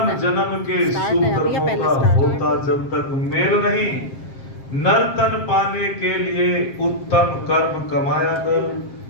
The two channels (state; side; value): late; right; 7.5 ms